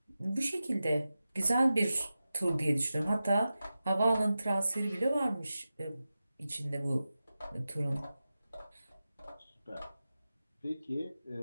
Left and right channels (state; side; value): inverted; both; correlation -0.93